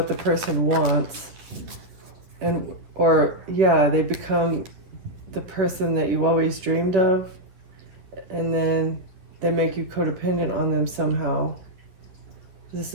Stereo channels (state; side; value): late; left; 11 ms